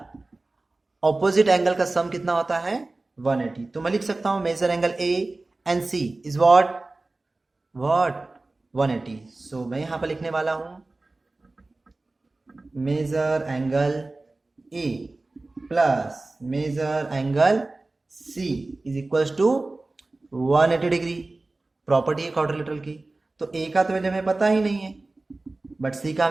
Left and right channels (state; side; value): quieter; left; 3.1 dB